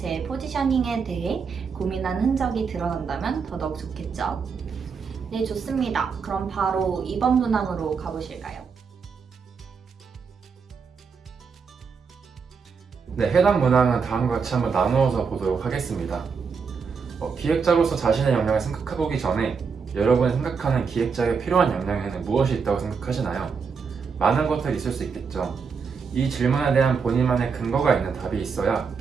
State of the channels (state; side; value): quieter; left; 5.7 dB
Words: 포지셔닝에 대해 고민한 흔적이 드러난다면 더더욱 좋겠죠. 네, 좋습니다. 그럼 바로 2번 문항으로 가보실까요? 네, 해당 문항은 다음과 같이 한번 나누어서 보도록 하겠습니다. 기획자로서 자신의 역량을 생각해보기 전에 여러분이 생각하는 기획자에게 필요한 역량에는 무엇이 있다고 생각하시나요? 많은 것들이 있을 수 있겠죠. 이 질문에 대한 본인만의 근거가 있는 답이 있어야